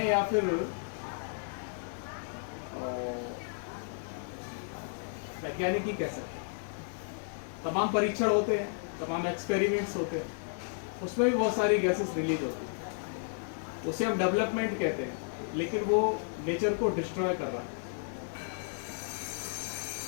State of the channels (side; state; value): right; silent; 56 dB below the other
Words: या फिर वैज्ञानिक ही कह सकते हैं। तमाम परीक्षण होते हैं, तमाम एक्सपेरिमेंट्स होते हैं, उसमें भी बहुत सारी गैसेस रिलीज होती है। उसे हम डेवलपमेंट कहते हैं, लेकिन वो नेचर को डिस्ट्रॉय कर रहा है।